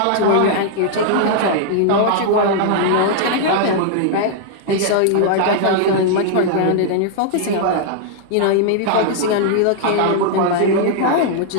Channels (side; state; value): both; different; correlation -0.01